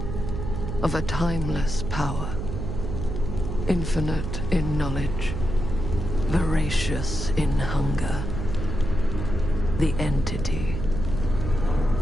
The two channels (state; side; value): noise; right; hum, 4 dB below the sound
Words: Of a timeless power, infinite in knowledge, voracious in hunger. The entity.